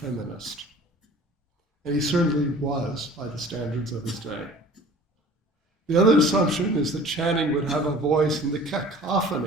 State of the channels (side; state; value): both; normal; correlation 0.45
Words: And he certainly was by the standards of his day. The other assumption is that Channing would have a voice in the